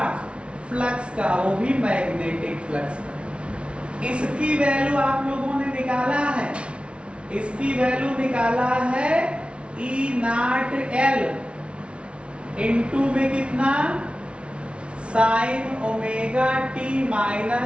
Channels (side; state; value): left; late; 0.059 ms